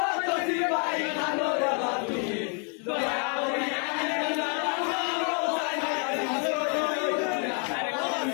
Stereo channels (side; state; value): right; quieter; 39.7 dB